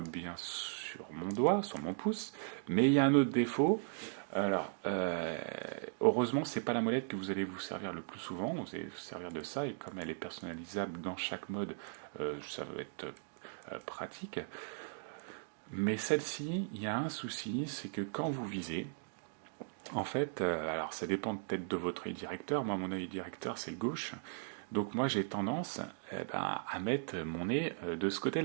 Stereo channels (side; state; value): left; silent; digital silence